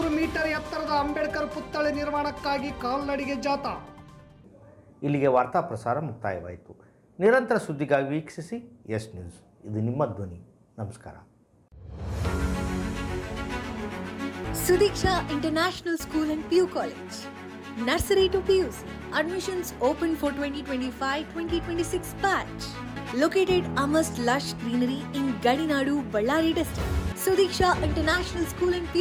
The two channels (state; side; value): identical; both; correlation 1.00